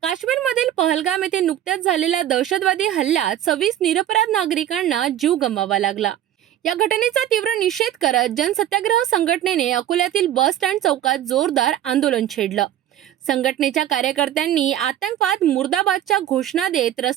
काश्मीरमधील पहलगाम येथे नुकत्याच झालेल्या दहशतवादी हल्ल्यात 26 निरपराध नागरिकांना जीव गमवावा लागला. या घटनेचा तीव्र निषेध करत जनसत्याग्रह संघटनेने अकोल्यातील बस स्टँड चौकात जोरदार आंदोलन छेडलं. संघटनेच्या कार्यकर्त्यांनी आतंकवाद मुर्दाबादच्या घोषणा देत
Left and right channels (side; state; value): left; quieter; 11.7 dB